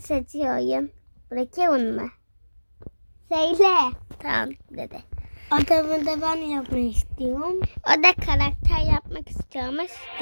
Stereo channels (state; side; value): inverted; both; correlation -1.00